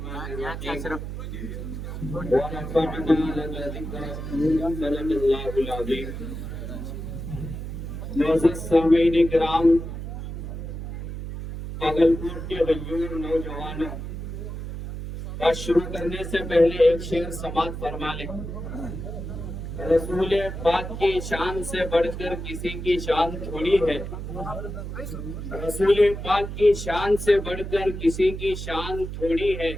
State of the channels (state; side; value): noise; right; hum, 7 dB below the sound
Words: भागलपुर के गयूर नौजवानों, बात शुरू करने से पहले एक शेर समाप्त फरमा ले। रसूल पाक की शान से बढ़कर किसी की शान थोड़ी है। रसूल पाक की शान से बढ़कर किसी की शान थोड़ी है।